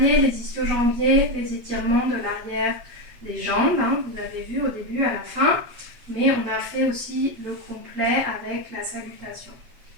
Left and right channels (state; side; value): late; left; 8.1 ms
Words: les ischio-jambiers, les étirements de l'arrière des jambes. Vous l'avez vu au début, à la fin. Mais on a fait aussi le complet avec la salutation.